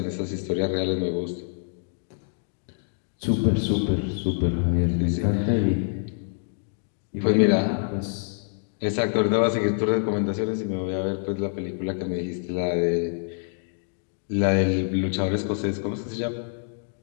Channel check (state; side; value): silent; right; 61 dB below the other